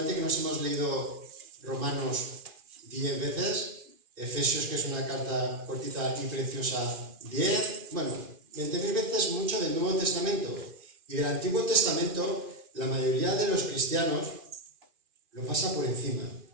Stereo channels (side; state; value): left; late; 2.4 ms